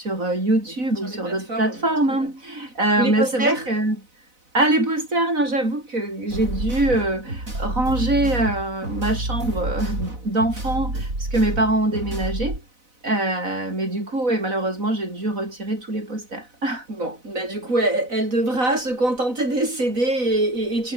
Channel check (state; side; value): late; left; 4.0 ms